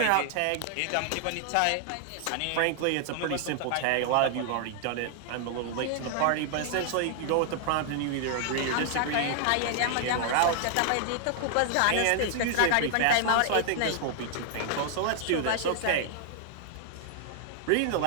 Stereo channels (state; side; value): different; both; correlation 0.00